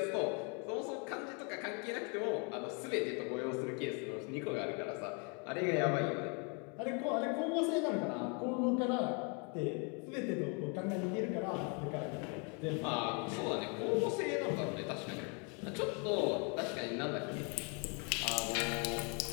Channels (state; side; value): quieter; right; 35.2 dB